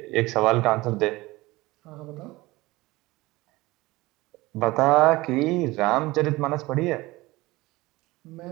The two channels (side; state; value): left; quieter; 20.3 dB